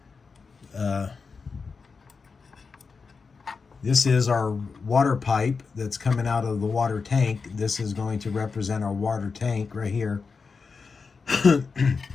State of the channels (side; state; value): right; quieter; 4.9 dB